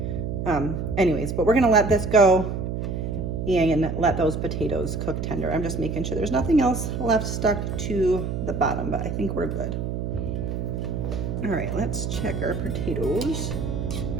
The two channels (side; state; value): right; noise; hum, 3 dB below the sound